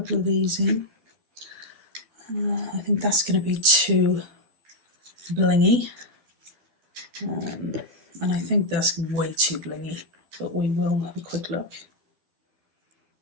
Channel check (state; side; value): late; left; 12 ms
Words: of these in. I think that's going to be too blingy. And I think that's way too blingy, but we will have a quick look.